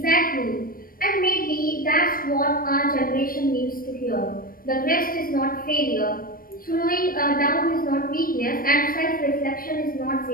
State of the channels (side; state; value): right; late; 0.41 ms